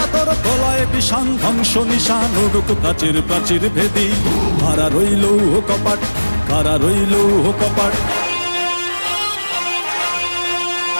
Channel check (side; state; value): both; inverted; correlation -1.00